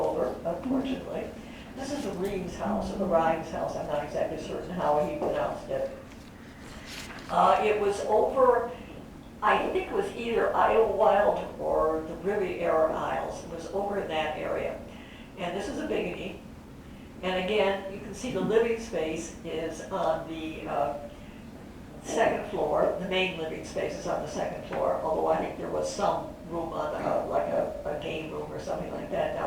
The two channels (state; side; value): identical; both; correlation 1.00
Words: unfortunately. This is the Reams house, or the Rhimes house. I'm not exactly certain how he pronounced it. It was over, I think it was either Idlewild or the Riviera Isles. It was over in that area. And this is a Biggity. And again, you can see the living space is on the second floor. The main living space is on the second floor, although I think there was some room on like a game room or something like that